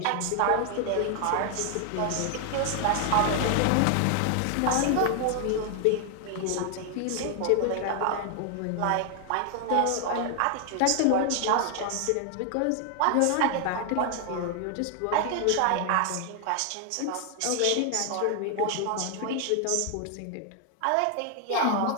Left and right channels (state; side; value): different; both; correlation 0.00